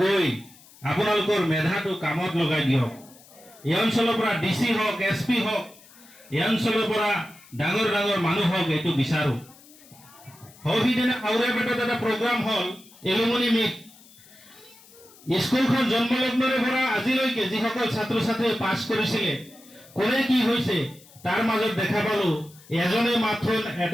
গৈ আপোনালোকৰ মেধাটো কামত লগাই দিয়ক। এই অঞ্চলৰ পৰা ডিসি হওক এসপি হওক এই অঞ্চলৰ পৰা ডাঙৰ ডাঙৰ মানুহ হওক এইটো বিচাৰো। সৌহিদিনা আউৰাপেটত এটা প্ৰগ্ৰাম হল এলুমনি মিট। স্কুলখন জন্মলগ্নৰে পৰা আজিলৈকে যিসকল ছাত্ৰ ছাত্ৰীয়ে পাছ কৰিছিলে কোনে কি হৈছে তাৰ মাজত দেখা পালো এজনে মাত্ৰ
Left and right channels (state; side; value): noise; left; hiss, 24 dB below the sound